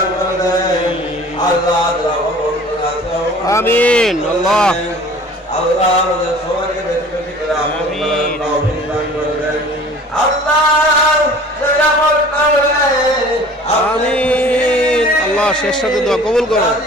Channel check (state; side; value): normal; both; correlation 0.46